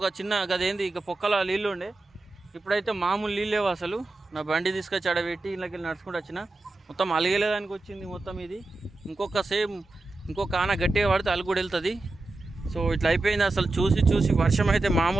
చిన్న గదేంది ఇక పొక్కల నీళ్ళు ఉండే. ఇప్పుడైతే మామూలు నీళ్ళు లేవు అసలు. నా బండి తీసుకొచ్చి ఆడబెట్టి ఇళ్ళకి వెళ్ళి నడుచుకుంటూ వచ్చిన, మొత్తం అలిగేదానికి వచ్చింది మొత్తం ఇది. ఇంకొక ఆన గట్టిగా పడితే అలుగు కూడా వెళ్తుంది. సో ఇట్లా అయిపోయింది అసలు. చూసి వర్షం అయితే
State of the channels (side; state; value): left; quieter; 3.0 dB